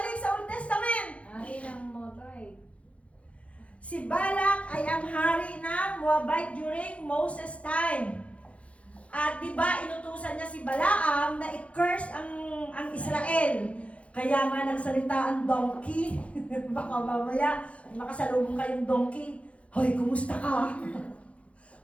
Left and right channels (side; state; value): right; late; 0.063 ms